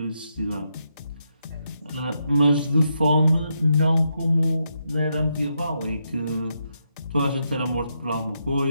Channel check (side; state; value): both; inverted; correlation -0.82